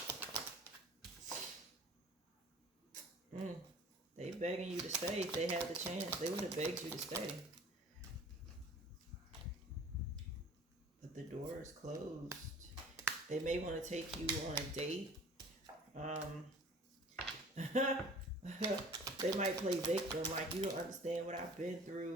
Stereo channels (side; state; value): both; normal; correlation 0.47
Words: They begging you to stay. If they had the chance, they would have begged you to stay. But the door is closed. They may want to take you on a date. They might play victim, like, you don't understand what I've been